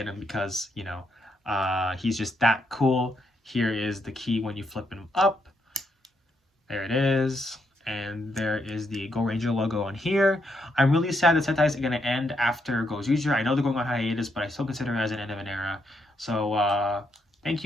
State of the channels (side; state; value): both; normal; correlation 0.78